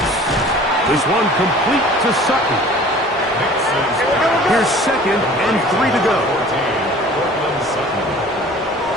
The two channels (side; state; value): both; normal; correlation 0.46